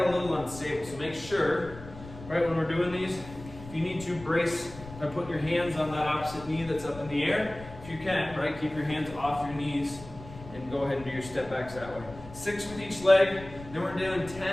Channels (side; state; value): left; noise; rumble, 15 dB below the sound